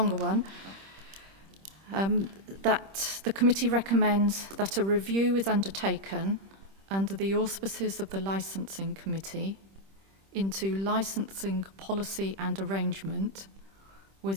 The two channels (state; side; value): late; left; 26 ms